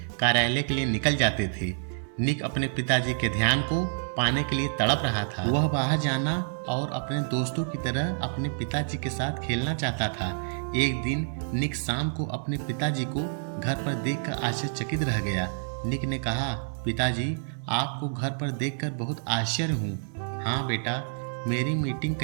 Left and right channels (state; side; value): silent; left; digital silence